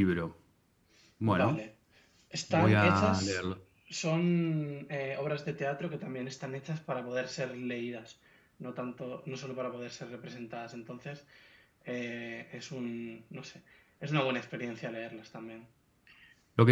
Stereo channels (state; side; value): identical; both; correlation 1.00